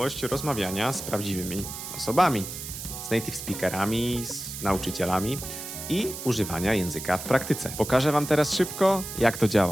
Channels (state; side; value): noise; right; hiss, 9 dB below the sound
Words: rozmawiania z prawdziwymi osobami, z native speakerami, z nauczycielami i używania języka w praktyce. Pokażę wam teraz szybko, jak to